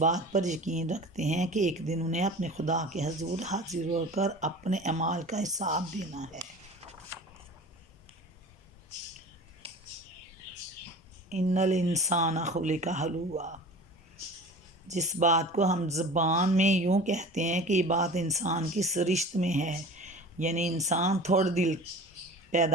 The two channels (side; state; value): both; normal; correlation 0.38